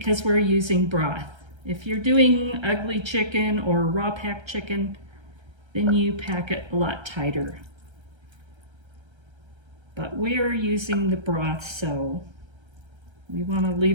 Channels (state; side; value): late; left; 1.3 ms